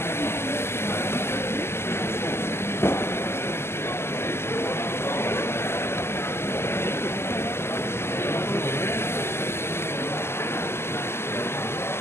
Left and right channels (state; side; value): late; right; 0.12 ms